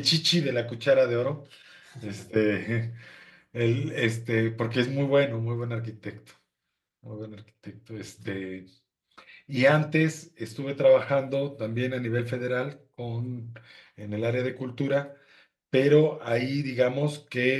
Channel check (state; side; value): identical; both; correlation 1.00